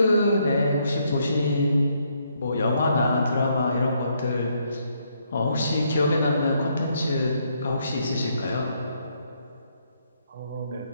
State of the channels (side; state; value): both; inverted; correlation -0.73